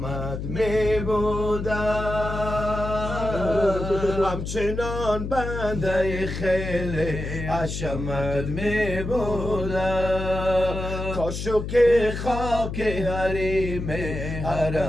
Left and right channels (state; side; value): noise; left; hum, 5 dB below the sound